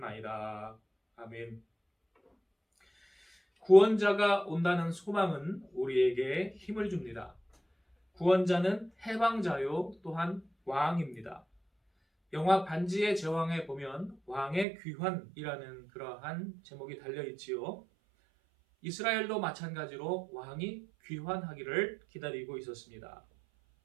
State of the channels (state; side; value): drops out; left; at 14.7 s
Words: 아멘. 구원자가 온다는 소망은 우리에게 힘을 줍니다. 구원자는 해방자요 또한 왕입니다. 영화 반지의 제왕에 보면 왕의 귀환이라는 그러한 제목이 달려있지요. 이스라엘도 마찬가지로 왕이 귀환하기를 기다리고 있었습니다.